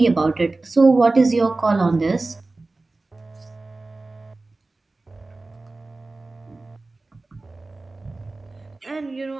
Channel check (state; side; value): quieter; left; 3.3 dB